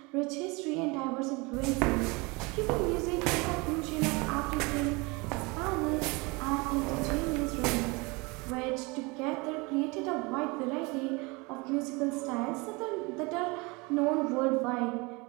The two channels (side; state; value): left; quieter; 26.6 dB